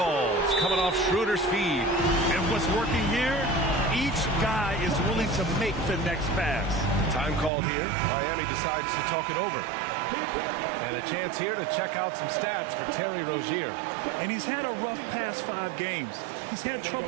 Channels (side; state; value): left; drops out; at 7.5 s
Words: Coming off Schroeder's feed. And what's working here? Each guy is willing to make the next pass. Time called here. Miami decides to talk it over. And a chance here to check out some stats for Terry Rozier. And he's had a rough past 5 games. He's had